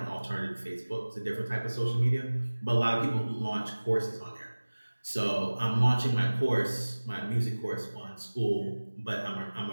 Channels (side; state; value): both; inverted; correlation -1.00